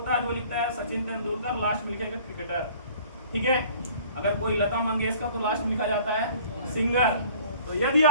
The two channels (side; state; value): both; inverted; correlation -0.48